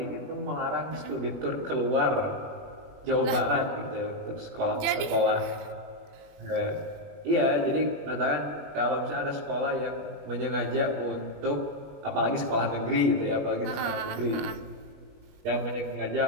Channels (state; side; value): late; left; 21 ms